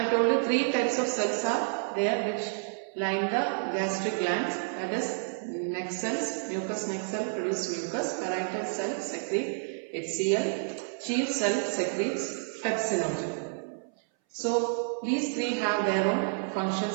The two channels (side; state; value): left; silent; 58 dB below the other